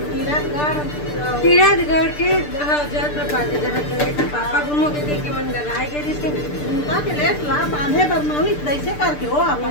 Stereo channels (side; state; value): right; late; 6.8 ms